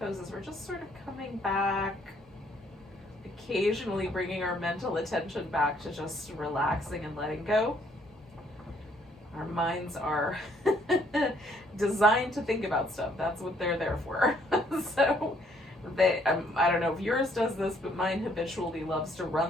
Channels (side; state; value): both; normal; correlation 0.66